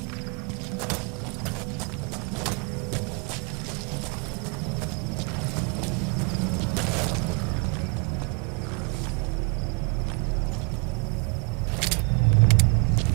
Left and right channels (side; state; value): left; quieter; 34.2 dB